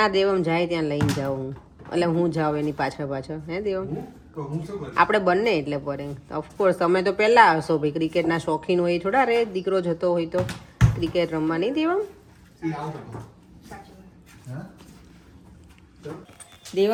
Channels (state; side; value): identical; both; correlation 1.00